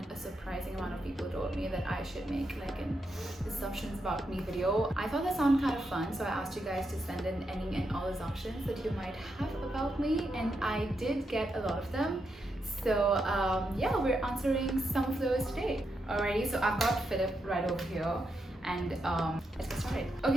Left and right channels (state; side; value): normal; both; correlation 0.83